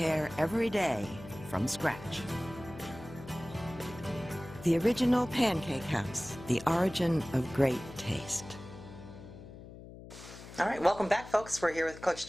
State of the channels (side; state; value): left; noise; hum, 15 dB below the sound